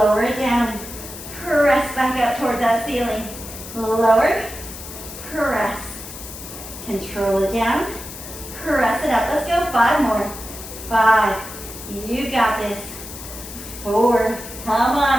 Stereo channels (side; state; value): left; noise; hiss, 12 dB below the sound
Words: it down, press back up towards that ceiling. Lower, press. Control it down, press it up. Let's go 5 more. 5, you got this. 4, come on.